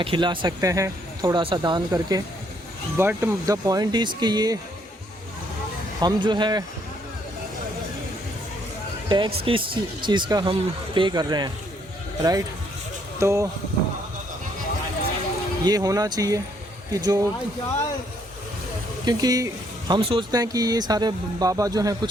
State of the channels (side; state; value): both; normal; correlation 0.69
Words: खिला सकते हैं थोड़ा सा दान करके। बट द पॉइंट इज़ कि ये हम जो है टैक्स किस चीज़ का हम पे कर रहे हैं, राइट? तो ये होना चाहिए कि जो, क्योंकि हम सोचते हैं कि ये सारे बाबा जो हैं